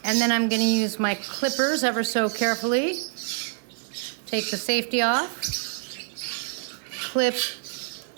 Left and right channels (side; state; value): left; silent; digital silence